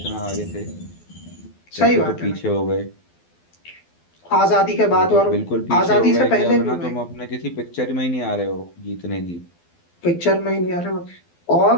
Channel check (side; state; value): right; late; 12 ms